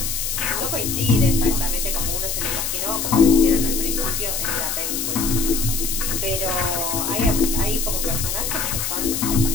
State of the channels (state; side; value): noise; left; hiss, 2 dB below the sound